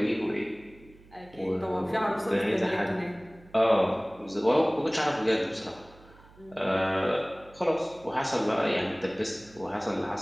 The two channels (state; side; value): noise; right; hum, 25 dB below the sound